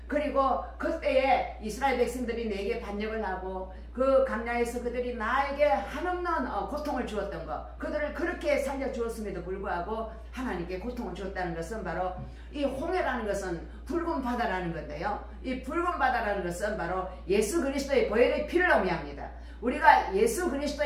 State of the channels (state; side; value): identical; both; correlation 1.00